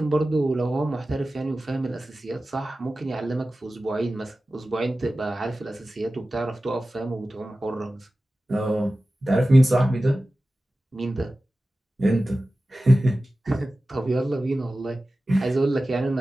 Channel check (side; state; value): both; normal; correlation 0.95